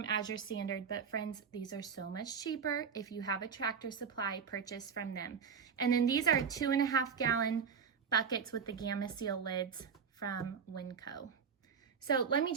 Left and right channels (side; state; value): left; quieter; 6.6 dB